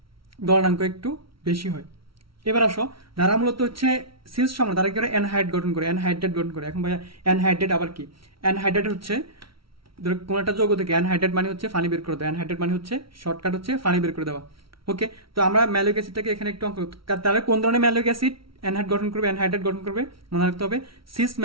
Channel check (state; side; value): late; left; 0.75 ms